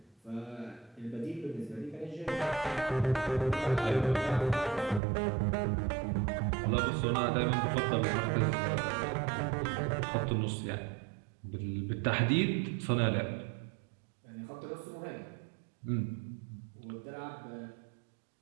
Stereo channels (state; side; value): drops out; left; at 5.0 s